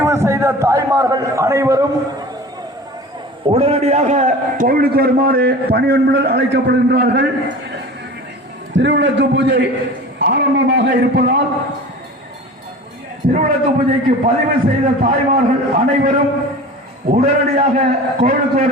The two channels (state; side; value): normal; both; correlation 0.37